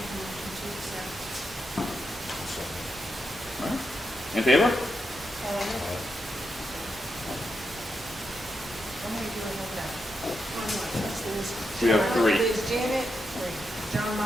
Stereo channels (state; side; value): normal; both; correlation 0.84